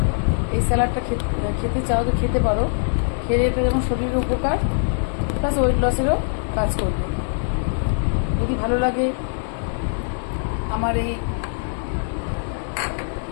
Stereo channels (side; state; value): right; silent; digital silence